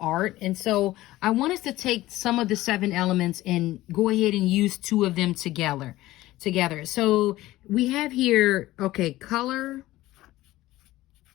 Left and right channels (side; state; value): right; quieter; 16.8 dB